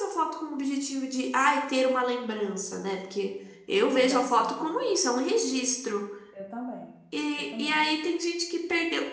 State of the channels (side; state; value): both; identical; correlation 1.00